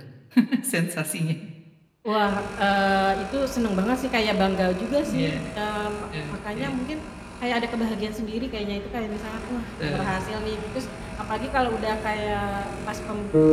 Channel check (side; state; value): both; identical; correlation 1.00